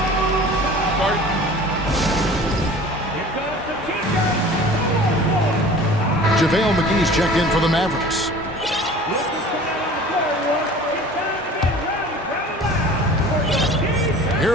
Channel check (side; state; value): both; normal; correlation 0.44